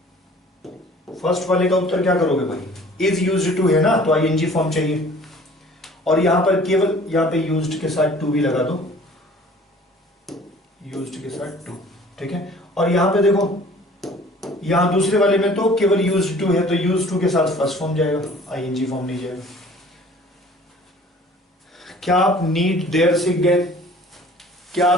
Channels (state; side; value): normal; both; correlation 0.50